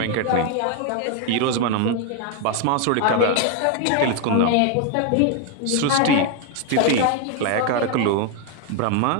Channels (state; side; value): different; both; correlation 0.01